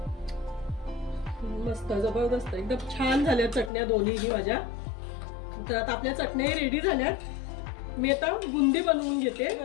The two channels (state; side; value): drops out; right; at 3.7 s